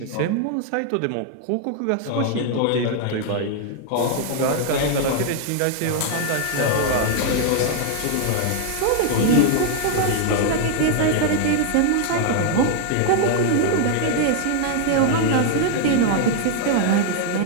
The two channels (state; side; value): different; both; correlation 0.00